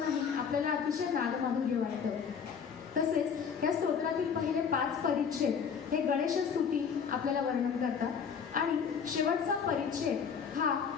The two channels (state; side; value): quieter; right; 6.7 dB